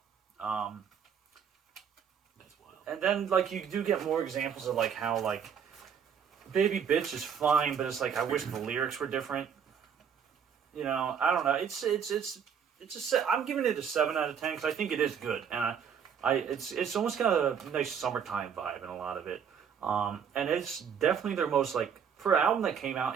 And then, like, you do get more examples of, like, how, like, Baby Bitch is fine, but it's like, I wish the lyrics were different. You know, I don't know. I'm giving it a 7 out of 10 because I think it is good. And it's almost got a nice summertime vibe in a lot of it. And it's definitely their most, like, for an album that came out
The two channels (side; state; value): left; quieter; 7.5 dB